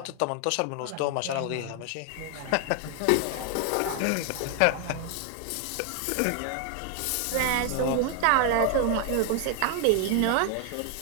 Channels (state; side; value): different; both; correlation 0.00